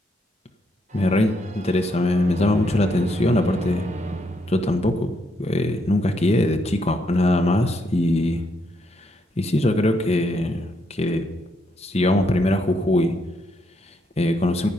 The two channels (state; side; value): normal; both; correlation 0.76